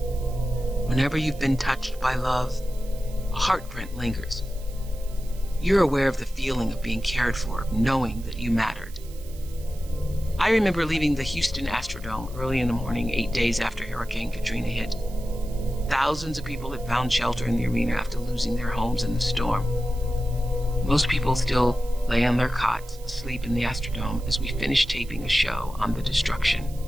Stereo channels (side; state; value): right; noise; hiss, 21 dB below the sound